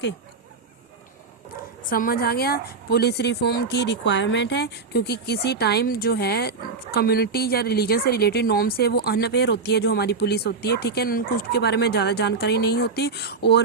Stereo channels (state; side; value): quieter; left; 4.6 dB